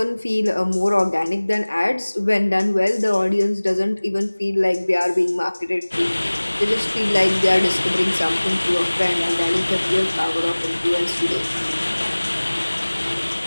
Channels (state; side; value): inverted; both; correlation -1.00